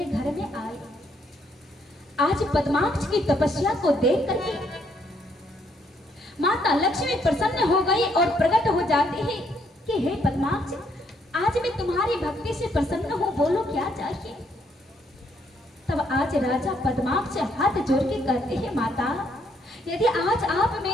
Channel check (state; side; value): normal; both; correlation 0.71